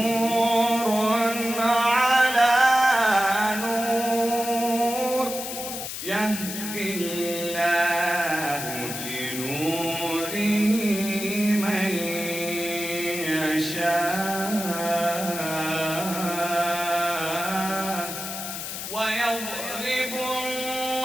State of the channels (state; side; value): noise; left; hiss, 6 dB below the sound